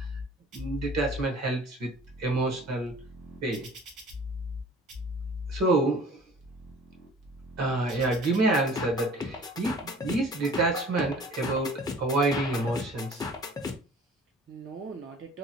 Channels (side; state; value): both; normal; correlation 0.48